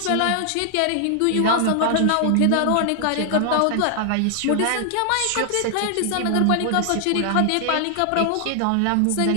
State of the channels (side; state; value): both; different; correlation 0.00